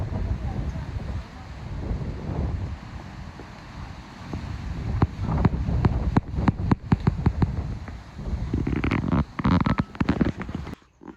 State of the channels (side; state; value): both; identical; correlation 1.00